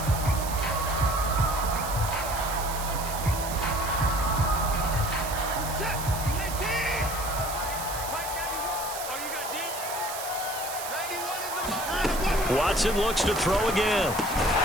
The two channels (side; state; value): right; noise; hiss, 8 dB below the sound